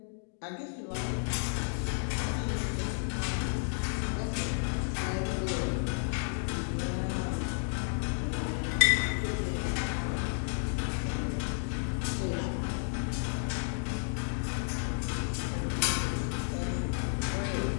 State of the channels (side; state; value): right; silent; digital silence